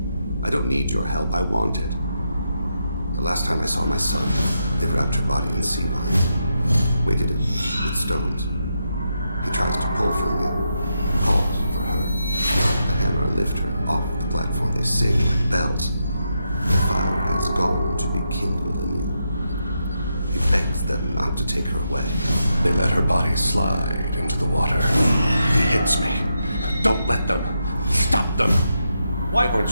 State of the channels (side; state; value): both; inverted; correlation -0.84